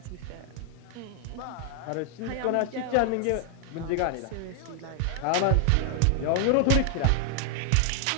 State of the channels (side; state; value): both; different; correlation 0.00